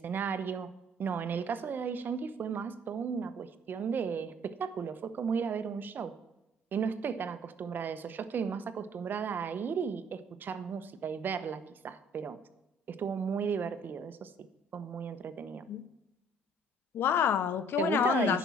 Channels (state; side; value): normal; both; correlation 0.57